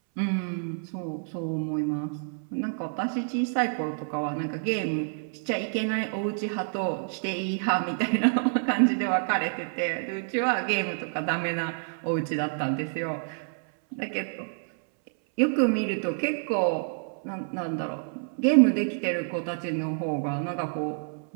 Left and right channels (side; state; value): left; silent; 59 dB below the other